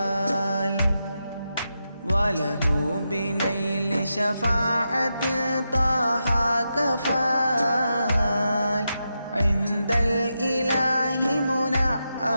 وله بنيل شفاعة طه كفال عند الإله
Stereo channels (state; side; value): inverted; both; correlation -0.87